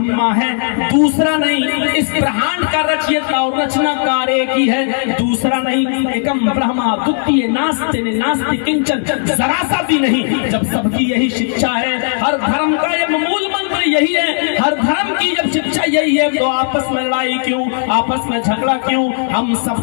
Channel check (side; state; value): right; silent; digital silence